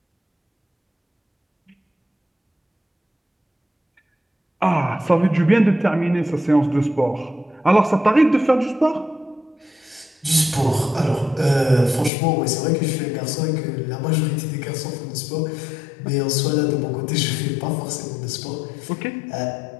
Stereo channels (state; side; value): drops out; right; at 12.1 s